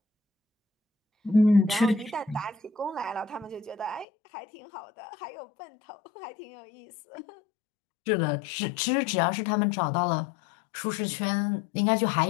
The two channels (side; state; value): right; drops out; at 4.0 s